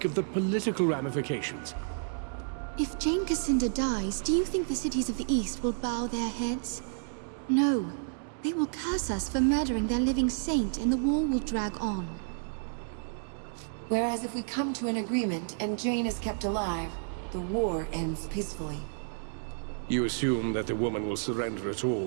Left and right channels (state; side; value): silent; left; digital silence